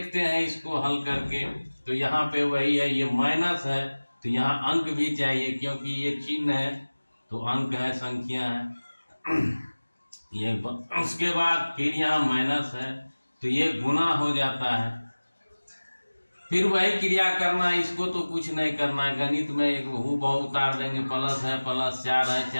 हैं इसको हल करके। तो यहाँ पे वही है, ये माइनस है तो यहाँ अंक भी चाहिए, क्योंकि ये चिन्ह है तो अंक है, संख्या है। ये उसके बाद फिर यहाँ माइनस है तो ये गुना हो जाता है। फिर वही क्रिया करना है, इसको तो कुछ नहीं करना है। गणित में एक हूबहू उतार देंगे, प्लस है प्लस, 4 है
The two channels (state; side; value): inverted; both; correlation -1.00